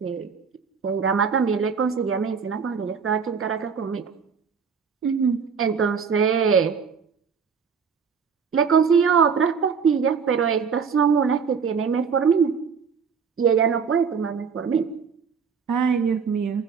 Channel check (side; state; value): left; quieter; 6.2 dB